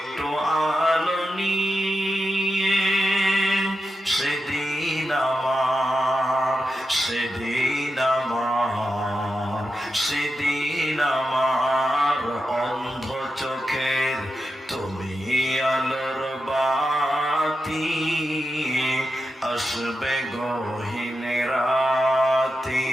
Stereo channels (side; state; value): both; normal; correlation 0.89